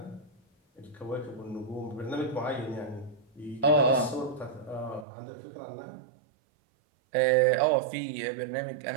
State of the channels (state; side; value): drops out; left; at 5.1 s